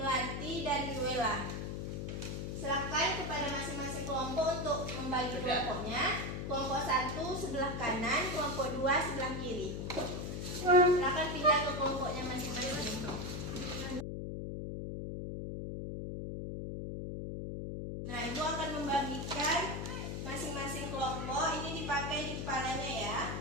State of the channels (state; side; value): noise; left; hum, 4 dB below the sound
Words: dan Wela. Silakan kepada masing-masing kelompok untuk membagi kelompoknya. Kelompok 1 sebelah kanan, kelompok 2 sebelah kiri. Silakan pindah ke kelompoknya masing-masing. Nah, Ibu akan membagikan masing-masing kelompok. Ini dipakai di kepalanya ya.